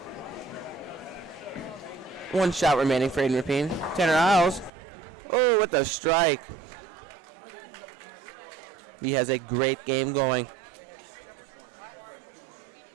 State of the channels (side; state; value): left; drops out; at 4.7 s